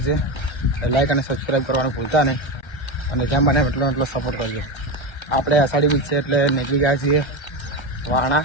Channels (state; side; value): late; right; 1.3 ms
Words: છે। લાઈક અને સબસ્ક્રાઈબ કરવાનું ભૂલતા નહીં અને જેમ બને એટલો સપોર્ટ કરજો। આપણે અષાઢી બીજ છે એટલે નીકળી ગયા છીએ વાણા